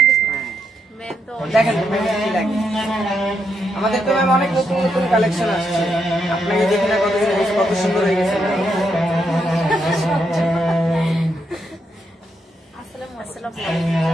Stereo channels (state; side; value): normal; both; correlation 0.80